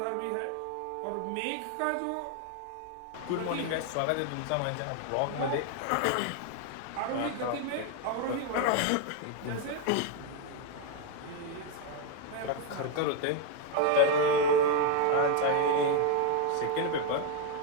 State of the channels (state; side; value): different; both; correlation 0.01